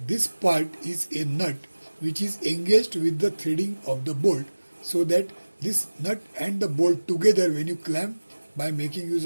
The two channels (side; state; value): both; inverted; correlation -1.00